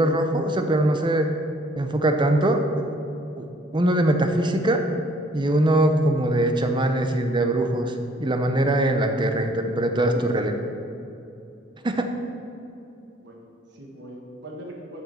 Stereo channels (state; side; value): normal; both; correlation 0.61